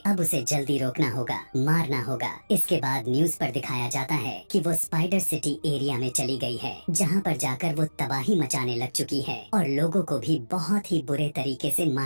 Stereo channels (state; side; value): inverted; both; correlation -1.00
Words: अब उसे जल्दी रोकना होगा, मारना होगा। इसके बाद न्यूज पर दिखाया जाता है कि वो स्पाइडर सिटी एरिया में चली गई है, जहाँ पर जाकर वो तबाही मचाने लग चुकी है और लोगों को भी बहुत ही बुरे तरीके से